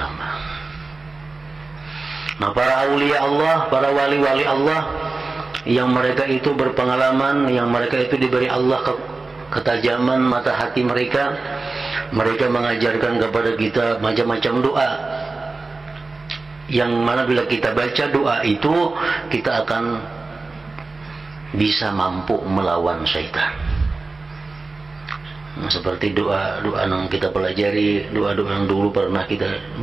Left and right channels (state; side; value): quieter; left; 3.6 dB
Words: Nah, para aulia Allah, para wali-wali Allah yang mereka itu berpengalaman, yang mereka itu diberi Allah ketajaman mata hati mereka, mereka mengajarkan kepada kita macam-macam doa yang mana bila kita baca doa itu kita akan bisa mampu melawan syaitan. Nah, seperti doa-doa yang kita pelajari, doa-doa yang dulu pernah kita